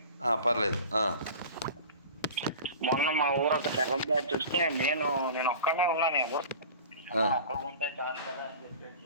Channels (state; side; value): inverted; both; correlation -0.38